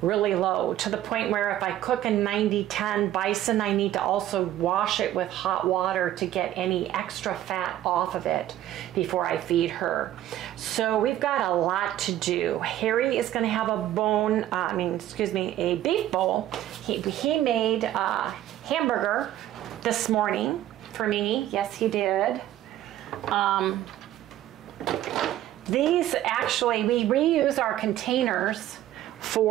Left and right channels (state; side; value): quieter; left; 12.9 dB